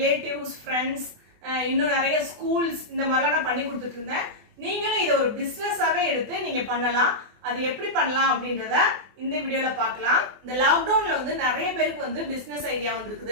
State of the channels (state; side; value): late; left; 24 ms